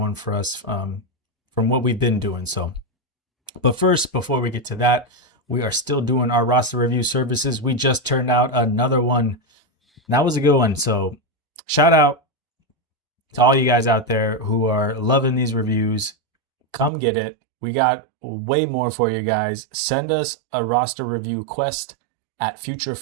for us from what we've been doing. So, but first, before we get to that, we are still doing our roster review services. We just turned out another one. That was a good one. So shout out to all you guys out there who are loving these reviews. Come get it. We got way more for you guys. Send us a roster review quest at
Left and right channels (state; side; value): drops out; left; at 16.9 s